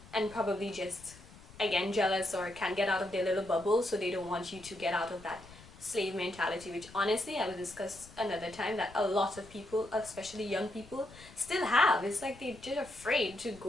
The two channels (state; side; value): noise; left; rumble, 20 dB below the sound